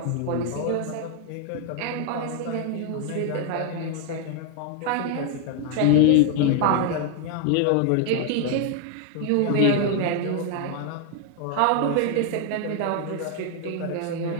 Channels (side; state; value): both; different; correlation 0.00